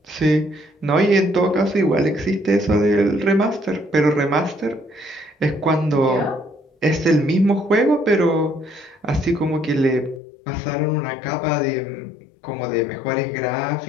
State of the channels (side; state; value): right; drops out; at 10.2 s